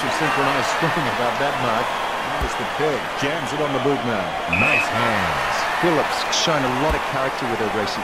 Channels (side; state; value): both; identical; correlation 1.00